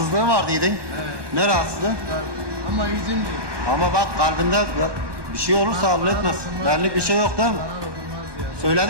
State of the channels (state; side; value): late; left; 1.2 ms